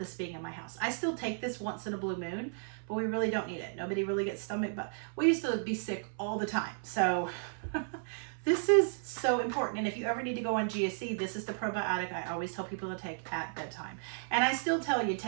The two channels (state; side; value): silent; left; 55 dB below the other